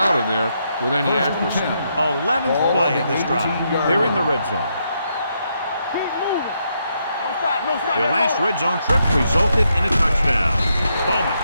of there with any accuracy. 11th play of this drive. They're in the red zone. Keep moving. Don't stop. Their last red zone trip resulted in a touchdown. Bowman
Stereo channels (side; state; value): both; inverted; correlation -0.79